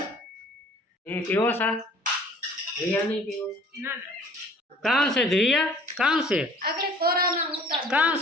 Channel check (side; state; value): both; normal; correlation 0.51